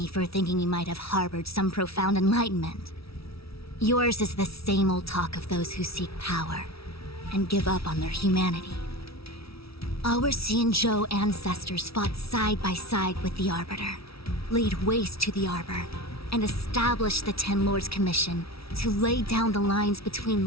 for thinking you might have harbored some profound enlightenment. Yours is the same old talk of those who seek power and give up on their humanity. Our Xianzhou ancestors fought side by side with the Arbiter, laid waste to the Arbor, and established the Ten Lords Commission to lay down the lines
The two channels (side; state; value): right; late; 0.76 ms